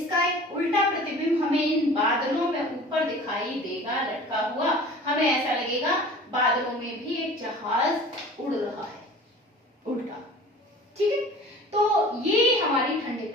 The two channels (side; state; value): both; normal; correlation 0.43